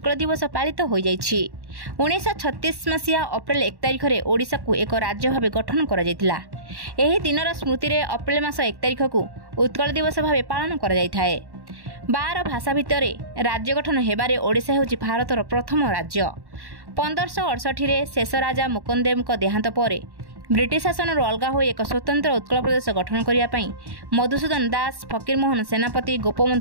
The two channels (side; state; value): left; late; 1.1 ms